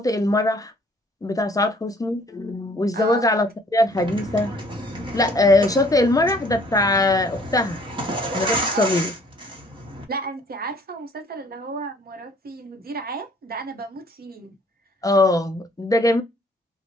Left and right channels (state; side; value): normal; both; correlation 0.58